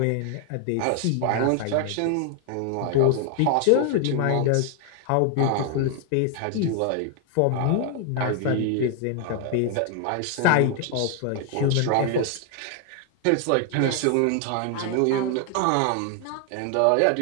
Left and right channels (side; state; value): both; different; correlation 0.00